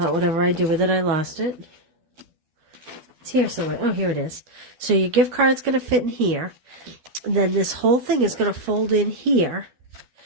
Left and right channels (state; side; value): late; left; 12 ms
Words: whatever I do with it, I lost it. It's here somewhere. Oh, here it is. So your gift card's going to fit in here. And then this whole thing is going to fold in here.